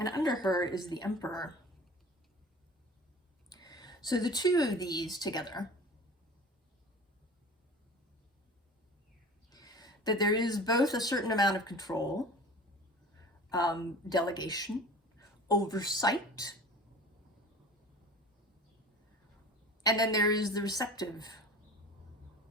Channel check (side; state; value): both; normal; correlation 0.40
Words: under her is the Emperor. So the two of these together, that there is both a certain amount of control, delegation, oversight, and then there is the receptive